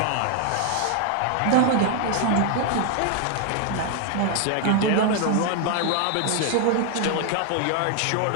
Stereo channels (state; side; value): different; both; correlation 0.00